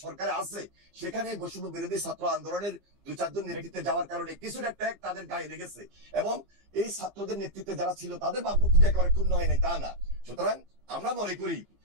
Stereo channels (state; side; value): late; left; 15 ms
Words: সরকারে আছে সেখানে বৈষম্য বিরোধী ছাত্র আন্দোলনের 2-4 জন নেতৃত্বে যাওয়ার কারণে কিছুটা ট্যাগ তাদের গায়ে লেগেছে এবং এই ছাত্রদের নেতৃত্বে যারা ছিল তাদের ভাবমূর্তি একেবারে ক্ষুণ্ণ হয় নাই তা না। সুতরাং আমরা মনে করি